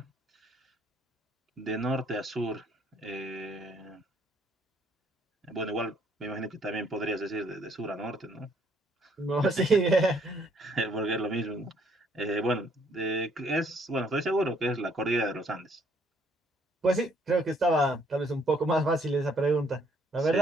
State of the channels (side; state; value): both; normal; correlation 0.66